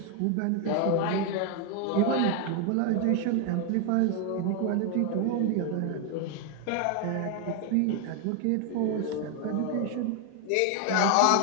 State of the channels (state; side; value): different; both; correlation 0.01